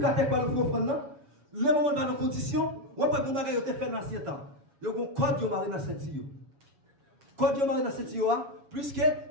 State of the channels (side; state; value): left; late; 7.2 ms